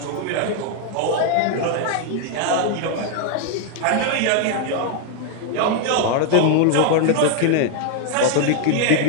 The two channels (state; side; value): different; both; correlation 0.00